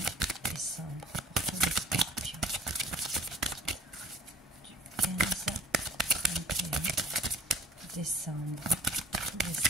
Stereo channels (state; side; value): normal; both; correlation 0.50